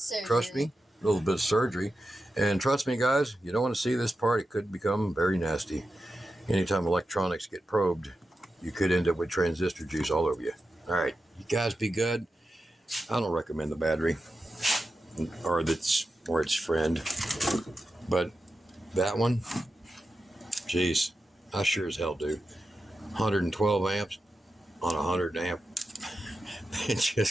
trust me, a little bit of surgery, and trust me, guys, you don't want to see this part. It could become very nasty. Anytime electronics get probed, you could end up with transistor juice all over you. All right, you guys be good. I don't recommend the battery or its friend, but that one, geez, I sure as hell do. 112 amps on a 100 amp. It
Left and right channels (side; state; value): both; normal; correlation 0.90